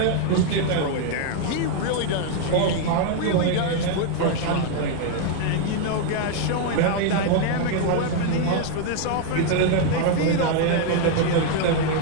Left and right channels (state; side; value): different; both; correlation 0.00